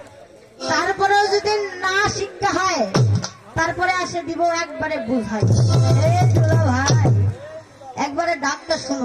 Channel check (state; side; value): identical; both; correlation 1.00